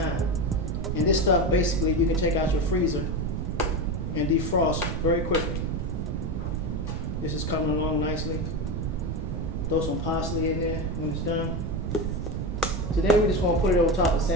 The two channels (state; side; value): noise; right; rumble, 3 dB below the sound